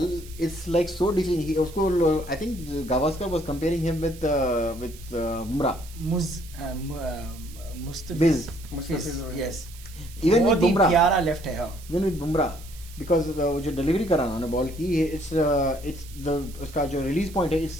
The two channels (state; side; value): noise; right; hiss, 19 dB below the sound